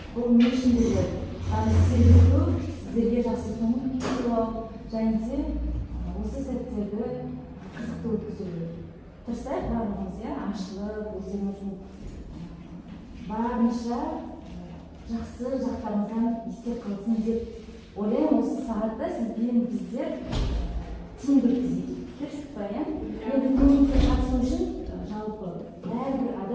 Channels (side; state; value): both; identical; correlation 1.00